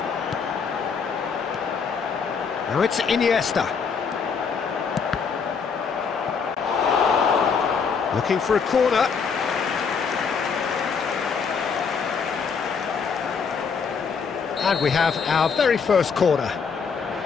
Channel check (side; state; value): right; quieter; 5.9 dB